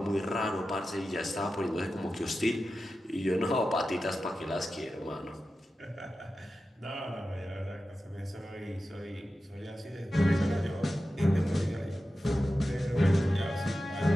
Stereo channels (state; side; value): normal; both; correlation 0.93